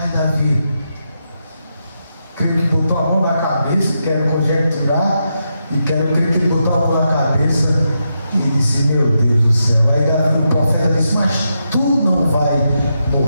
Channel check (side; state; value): both; inverted; correlation -0.84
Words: Davi, creio que botou a mão na cabeça, quero conjecturar, e quero crer que ele botou a mão na cabeça e disse: meu Deus do céu. Aí Davi, o profeta, disse: mas tu não vai